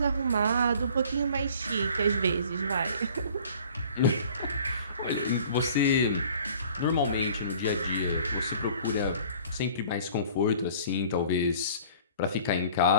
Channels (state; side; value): inverted; both; correlation -0.50